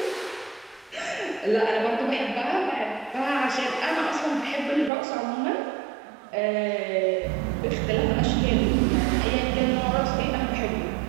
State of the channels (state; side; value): drops out; left; at 4.9 s